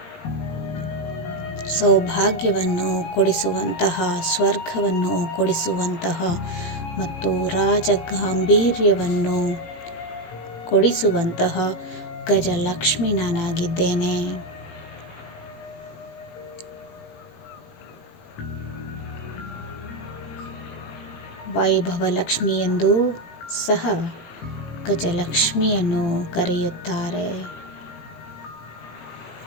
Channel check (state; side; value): late; right; 18 ms